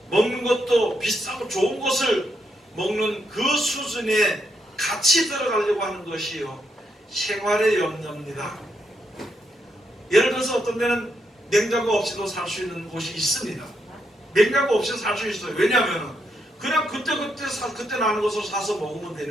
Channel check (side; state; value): both; normal; correlation 0.80